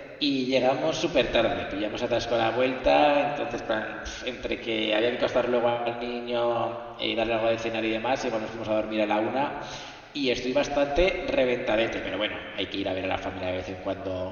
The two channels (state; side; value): identical; both; correlation 1.00